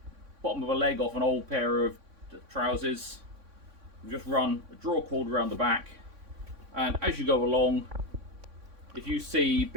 bottom of a leg off an old pair of trousers. You just run a draw cord around the back, and as you go along, if you see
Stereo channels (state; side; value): late; left; 3.6 ms